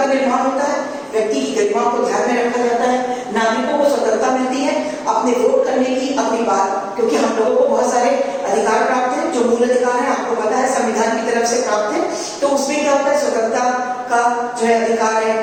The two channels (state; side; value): identical; both; correlation 1.00